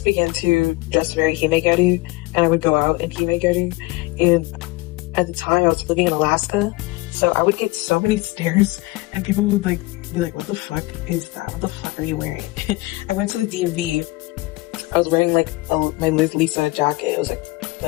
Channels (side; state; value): right; quieter; 22.1 dB